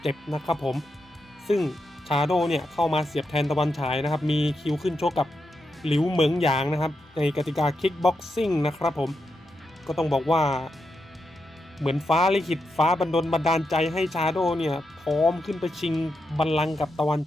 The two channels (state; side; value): normal; both; correlation 0.85